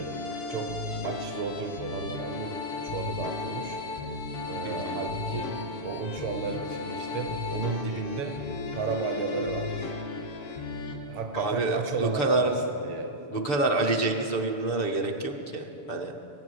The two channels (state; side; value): late; right; 6.8 ms